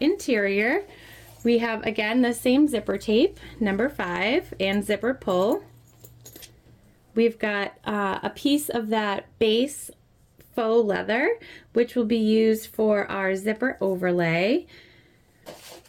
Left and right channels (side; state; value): both; identical; correlation 1.00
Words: We have, again, the same zipper tape, number 5, and zipper pull. We've got a piece of that base faux leather, which will be used for our zipper overlay.